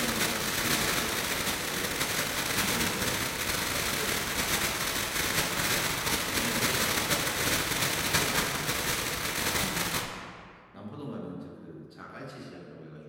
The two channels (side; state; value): both; identical; correlation 1.00